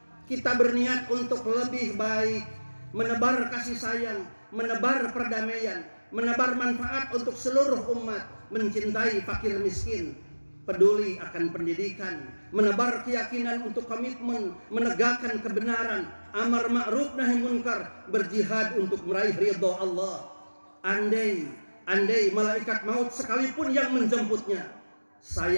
kita berniat untuk lebih baik, menebar kasih sayang, menebar perdamaian, menebar manfaat untuk seluruh umat, mencintai fakir miskin, peduli akan pendidikan, menebar keyakinan untuk komitmen, menegakkan kebenaran, amar ma'ruf nahi munkar, berjihad untuk meraih ridho Allah. Andai malaikat maut sekalipun yang menjemputnya,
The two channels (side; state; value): both; inverted; correlation -1.00